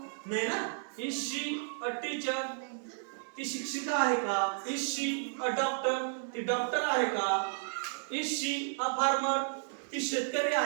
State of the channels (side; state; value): left; silent; 55 dB below the other